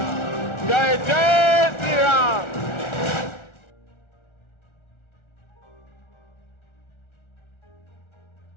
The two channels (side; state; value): right; late; 1.4 ms